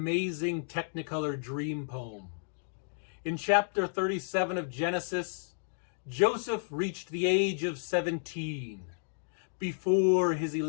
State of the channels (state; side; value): silent; right; digital silence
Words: Technicolor dream poem. In chapter 37 of Genesis, Joseph reached the age of 17 before his